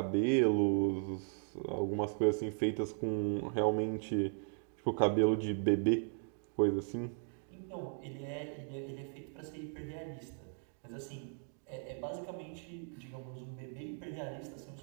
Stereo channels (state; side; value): silent; left; 53 dB below the other